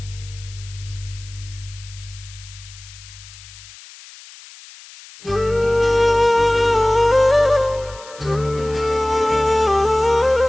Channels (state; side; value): noise; left; hiss, 19 dB below the sound